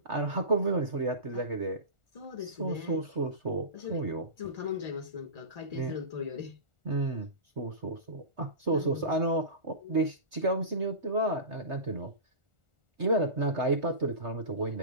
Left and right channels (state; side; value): late; left; 1.4 ms